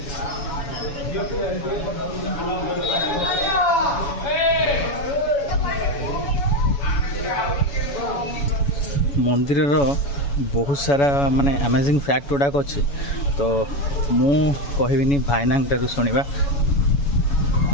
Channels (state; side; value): late; right; 7.1 ms